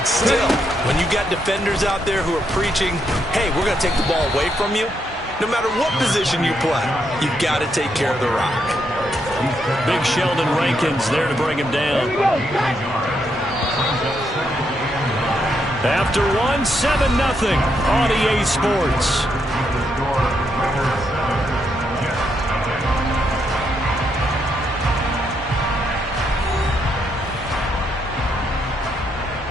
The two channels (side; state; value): both; normal; correlation 0.78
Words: still, when you got defenders out there who are preaching, hey, we're going to take the ball away from you, no matter what position you play, you've got to take care of the rock. Big Sheldon Rankins there to bring him down. After one, 7-0 on EA Sports.